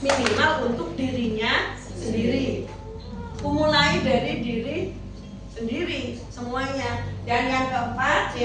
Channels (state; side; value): identical; both; correlation 1.00